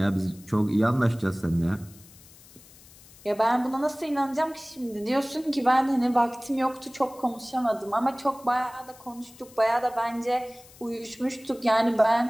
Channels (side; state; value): left; noise; hiss, 23 dB below the sound